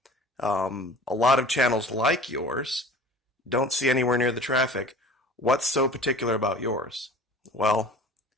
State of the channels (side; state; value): both; normal; correlation 0.43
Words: A lot of channels like yours don't see anywhere near the traffic. What's so particular about yours? Well,